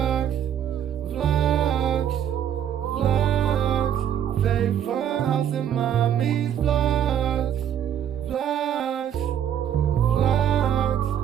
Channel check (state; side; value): quieter; left; 9.7 dB